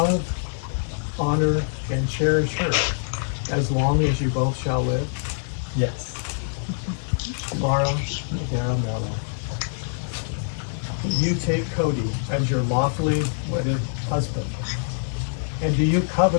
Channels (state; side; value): silent; right; 60 dB below the other